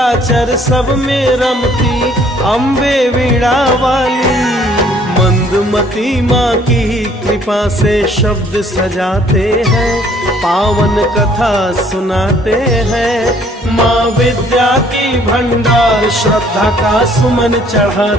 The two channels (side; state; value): both; normal; correlation 0.60